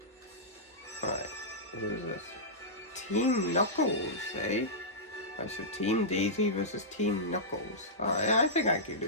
Alright, who is this? Team Knuckles, eh? Alright, so Team Daisy versus Team Knuckles. Alright, I think I can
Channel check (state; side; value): normal; both; correlation -0.14